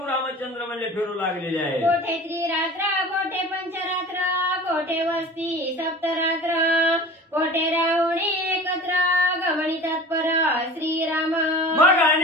रामचंद्र म्हणजे फिरू लागलेले आहे. कोठे त्रिरात्र कोठे पंचरात्र, कोठे वस्ती सप्तरात्र, कोठे रावणी एकत्र गमणी तत्पर श्रीराम. मग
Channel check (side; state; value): both; normal; correlation 0.39